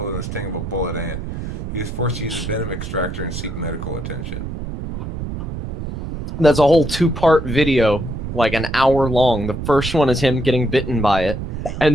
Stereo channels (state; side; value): noise; right; rumble, 6 dB below the sound